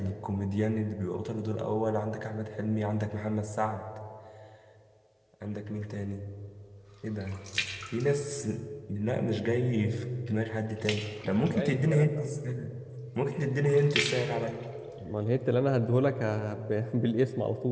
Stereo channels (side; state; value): both; identical; correlation 1.00